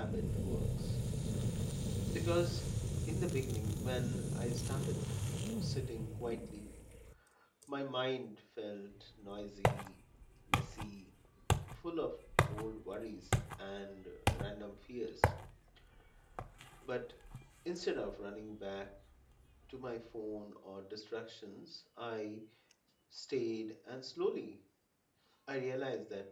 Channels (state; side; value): identical; both; correlation 1.00